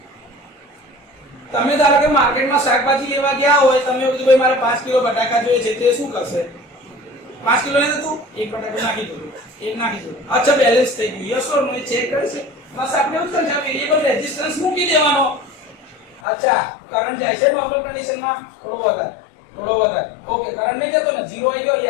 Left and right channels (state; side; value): drops out; right; at 16.2 s